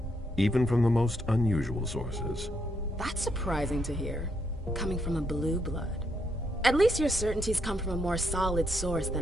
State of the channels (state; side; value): normal; both; correlation 0.77